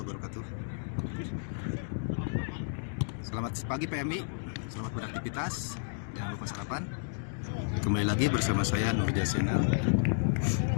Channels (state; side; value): silent; right; digital silence